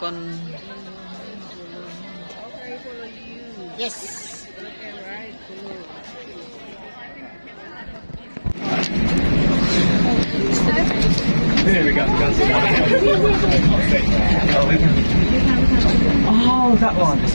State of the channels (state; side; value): inverted; both; correlation -1.00